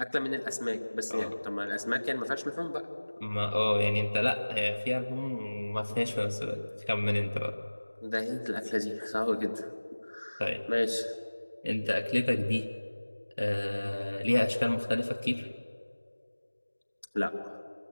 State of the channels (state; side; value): inverted; both; correlation -1.00